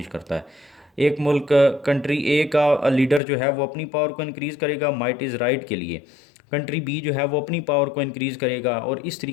करता है। एक मुल्क, कंट्री ए का लीडर जो है वो अपनी पावर को इंक्रीज़ करेगा माइट इज़ राइट के लिए, कंट्री बी जो है वो अपनी पावर को इंक्रीज़ करेगा और इस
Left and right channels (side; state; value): right; drops out; at 3.2 s